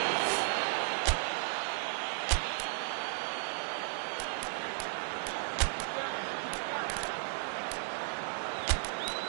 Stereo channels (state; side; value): silent; left; digital silence